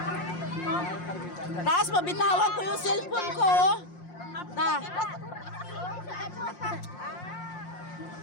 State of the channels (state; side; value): late; right; 5.6 ms